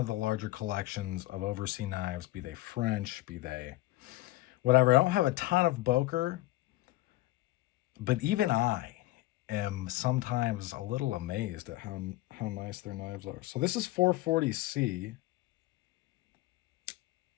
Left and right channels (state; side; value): quieter; right; 17.9 dB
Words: the larger collections of overseas knives, be they French, be they whatever. I don't have a ton of Boker, but even I am sometimes a little amazed at how nice their knives are. So this is 440C.